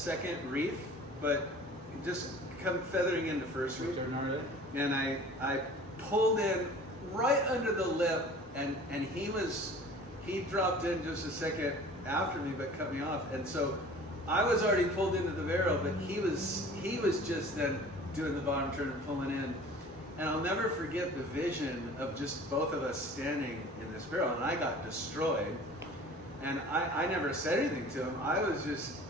reef, but just come feathering into first reef. And I pulled in right under the lip, and he dropped in just a second after me, but cut me off. And so I was already pulled into the barrel, but he was just then doing the bottom turn and pulling in. And I'll never forget the vision of just both of us standing in this barrel, and I got destroyed. And I never said anything to him.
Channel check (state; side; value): normal; both; correlation 0.45